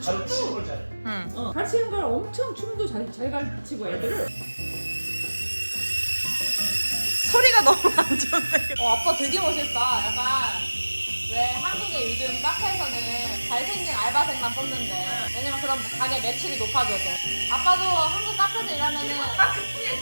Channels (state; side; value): inverted; both; correlation -1.00